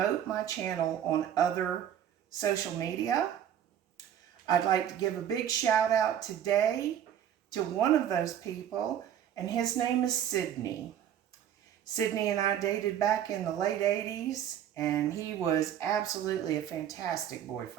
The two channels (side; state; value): left; quieter; 10.1 dB